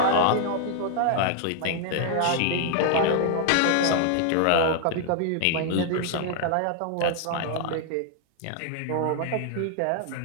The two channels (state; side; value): different; both; correlation 0.00